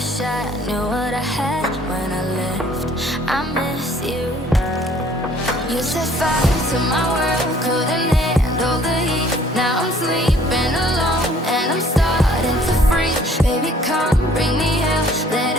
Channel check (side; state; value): both; normal; correlation 0.57